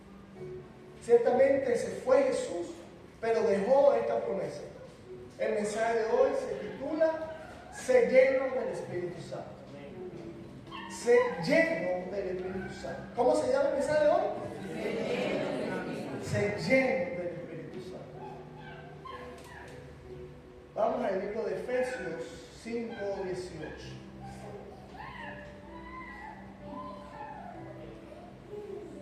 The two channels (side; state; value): both; identical; correlation 1.00